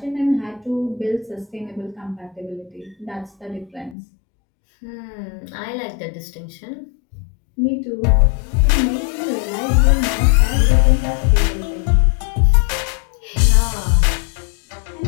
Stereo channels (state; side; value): drops out; right; at 4.0 s